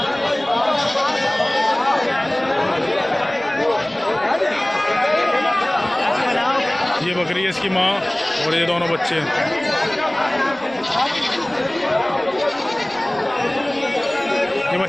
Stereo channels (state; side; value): noise; right; rumble, 27 dB below the sound